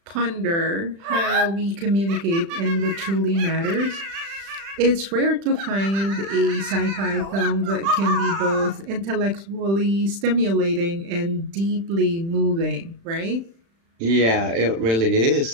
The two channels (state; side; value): late; left; 36 ms